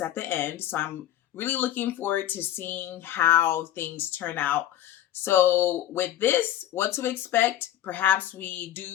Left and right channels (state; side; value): quieter; right; 12.4 dB